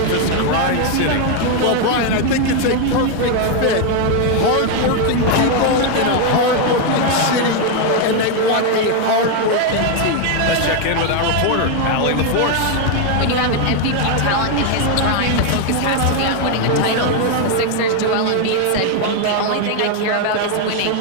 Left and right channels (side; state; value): both; different; correlation 0.01